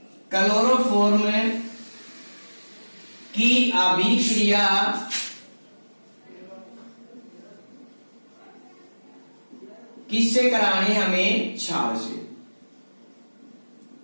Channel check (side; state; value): both; inverted; correlation -1.00